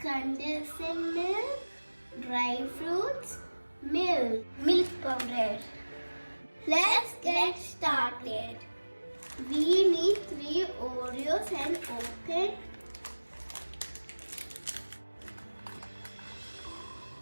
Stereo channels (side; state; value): both; inverted; correlation -1.00